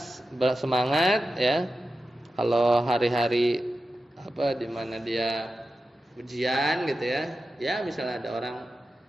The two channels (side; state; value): both; normal; correlation 0.92